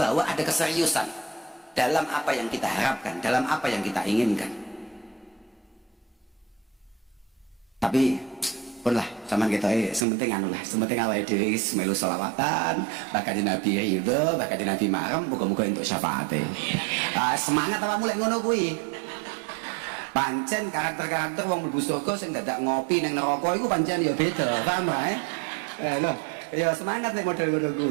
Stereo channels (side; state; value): left; drops out; at 10.0 s